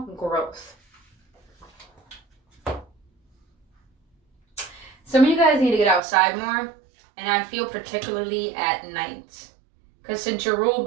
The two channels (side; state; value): left; drops out; at 6.0 s